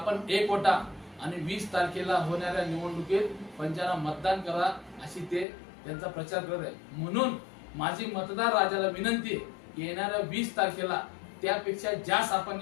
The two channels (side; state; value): right; drops out; at 5.5 s